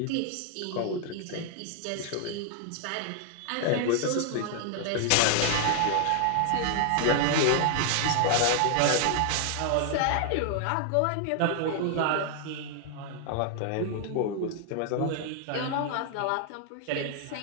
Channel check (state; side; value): different; both; correlation 0.00